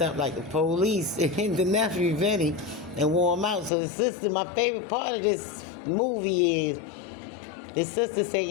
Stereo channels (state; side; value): drops out; right; at 3.7 s